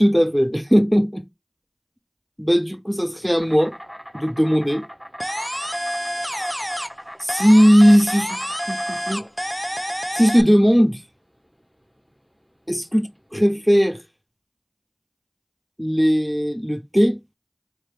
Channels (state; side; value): identical; both; correlation 1.00